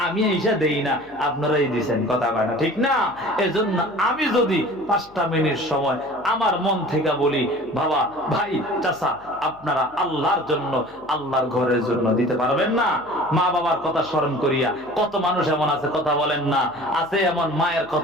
আমি এইসা দেই না, আপনারাই দিচ্ছেন, কথা কয় না, ঠিক না? এজন্য আমি যদি 5টা মিনিট সময় আমার মন থেকে বলি, বাবা, ভাই, চাচা, আপনারা আল্লাহর জন্য, আল্লাহর ঘরের জন্য দিতে পারবেন না? মা বাবার কথা স্মরণ করিয়া কত মানুষ এমন আছে কথা বলেন না, আছে এমন মায়ের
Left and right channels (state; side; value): noise; left; hum, 27 dB below the sound